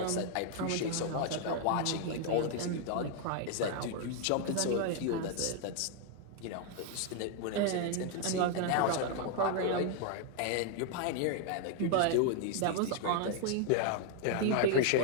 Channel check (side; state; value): both; different; correlation 0.00